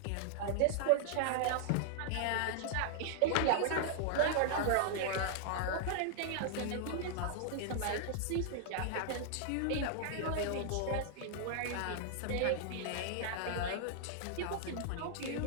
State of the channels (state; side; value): different; both; correlation -0.01